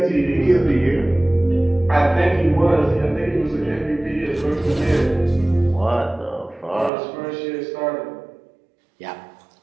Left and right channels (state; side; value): drops out; left; at 6.9 s